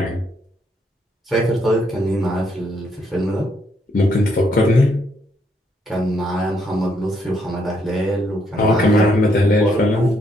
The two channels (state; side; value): normal; both; correlation 0.73